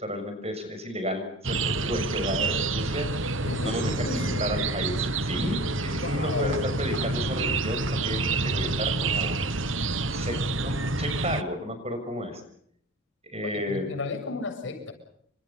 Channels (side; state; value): both; normal; correlation 0.38